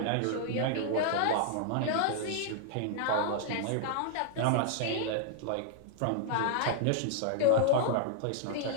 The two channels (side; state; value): both; different; correlation -0.01